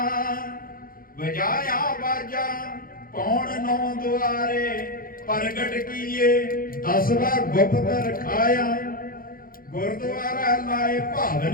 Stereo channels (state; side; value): late; right; 0.42 ms